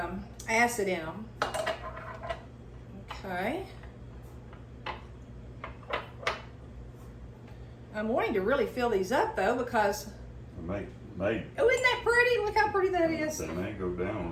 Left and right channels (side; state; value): both; identical; correlation 1.00